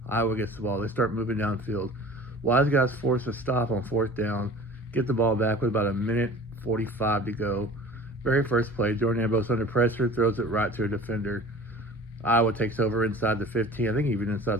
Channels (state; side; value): normal; both; correlation 0.42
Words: Iowa gets the ball. They start moving downfield. Wiseguys force a stop on 4th down, get the ball back with about a minute 45 to go. Very first play, Jordan Ambrose under pressure, throws it right to a defender. Iowa takes over inside the 15, I think even inside